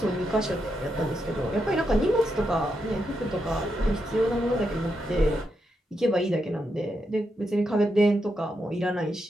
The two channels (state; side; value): normal; both; correlation 0.83